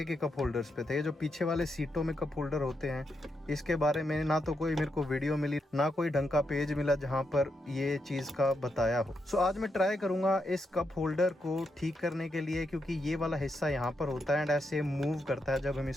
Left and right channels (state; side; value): normal; both; correlation 0.82